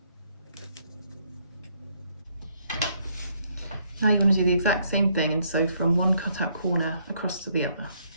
Now you're going to do the exact same thing and sew from one cutout corner across to the other.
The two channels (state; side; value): inverted; both; correlation -0.70